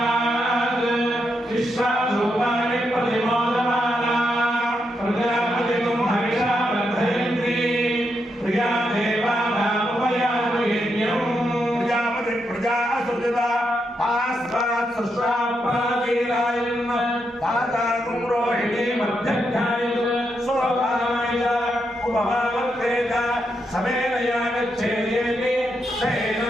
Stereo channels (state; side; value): normal; both; correlation 0.82